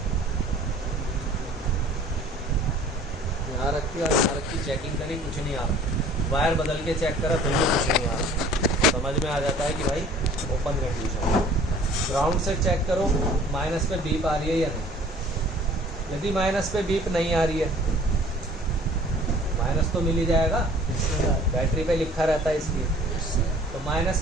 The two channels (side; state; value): both; normal; correlation 0.51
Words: यहाँ रखी और यहाँ रखी, चेकिंग करी, कुछ नहीं आ रहा। वायर बदल के चेक करा, फिर भी कुछ नहीं आ रहा। समझ में आ जाता है कि भाई ओपन कंडीशन। ग्राउंड से चेक करो माइनस पे बीप आ रही है या नहीं। यदि माइनस पे बीप नहीं आ रही है, माइनस तो मिल ही जाएगा, बैटरी पे लिखा रहता है इसलिए। तो माइनस